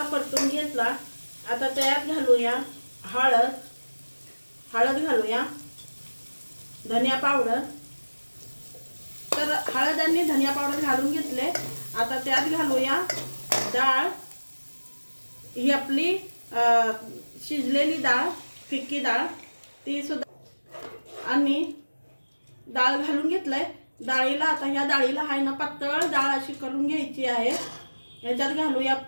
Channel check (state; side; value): inverted; both; correlation -1.00